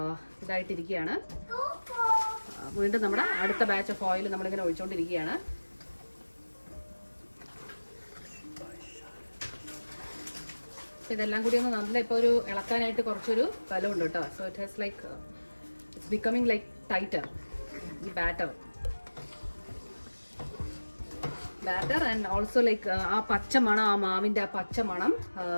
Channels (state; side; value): inverted; both; correlation -1.00